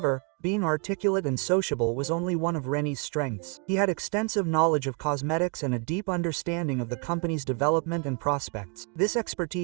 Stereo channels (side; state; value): left; quieter; 34.2 dB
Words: being articulate and sociable was only one of Rennie's strengths. He had extensive knowledge of cosmetics and a deep understanding of the company's development and prospects. This